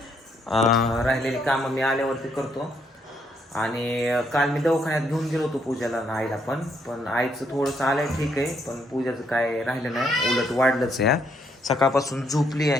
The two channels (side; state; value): both; normal; correlation 0.73